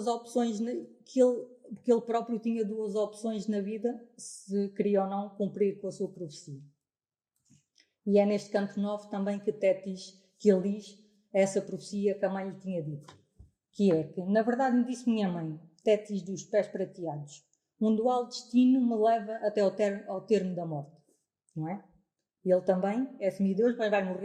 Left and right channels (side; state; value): both; identical; correlation 1.00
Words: opções, que ele próprio tinha duas opções na vida, se queria ou não cumprir com a sua profecia. E é neste canto 9 também que ele diz essa profecia que a mãe lhe tinha dito, que é que, na verdade, me disse minha mãe, Tétis dos pés prateados, um dual destino me leva até ao termo da morte, não é? Ele também é semideus, mas vai